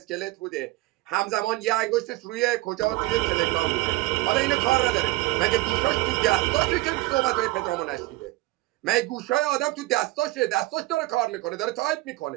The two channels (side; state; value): left; quieter; 19.9 dB